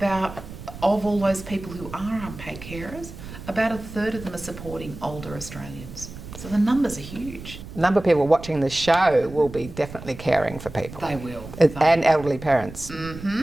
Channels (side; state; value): right; noise; rumble, 13 dB below the sound